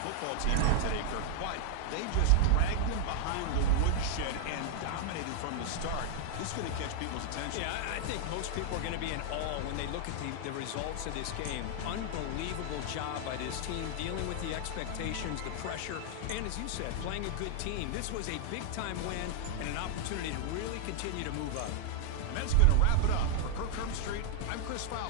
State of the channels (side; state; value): both; different; correlation 0.00